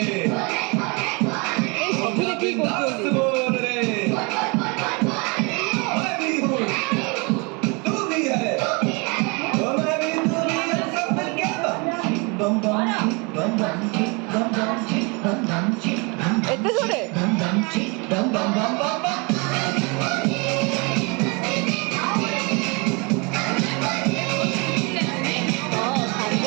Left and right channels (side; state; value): left; quieter; 30.1 dB